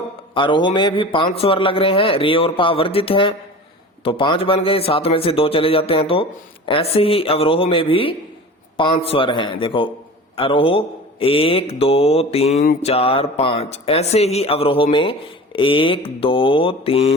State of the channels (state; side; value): normal; both; correlation 0.36